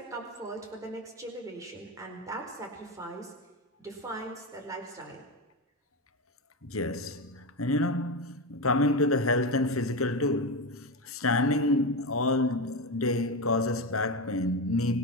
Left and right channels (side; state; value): both; normal; correlation 0.16